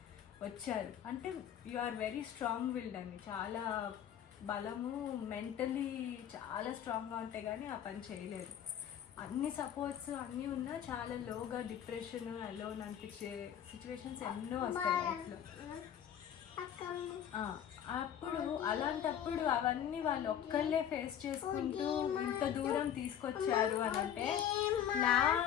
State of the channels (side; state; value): right; quieter; 9.6 dB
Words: వచ్చారు అంటే you are very strong willed అండి, చాలా బలము, మెంటలీ చాలా స్ట్రాంగ్గా ఉంటే కానీ ఆ పని చేయలేరు. అన్ని సపోర్ట్స్ అన్నీ ఉన్నా చాలా లోగా డిప్రెషన్ అలోన్ అనిపించే సిచ్యువేషన్స్ ఎన్నో వస్తాయి లైఫ్లో. అప్పుడు అలాంటప్పుడు అవన్నీ వాళ్ళు ఒక్కళ్ళే ఫేస్ చేసుకుంటూ ఇంత దూరం తీసుకొచ్చారు అని అంటే నా